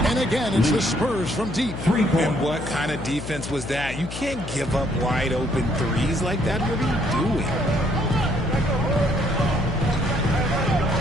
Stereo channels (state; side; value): noise; left; hum, 9 dB below the sound